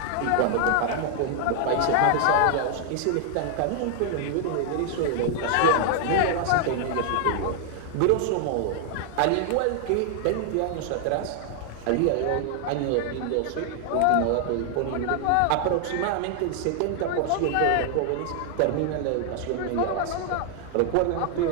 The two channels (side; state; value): both; different; correlation 0.00